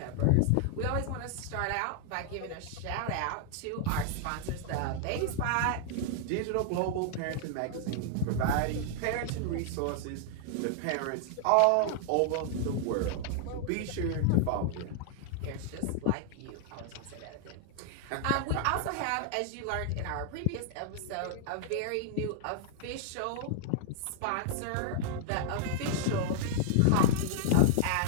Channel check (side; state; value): both; different; correlation 0.00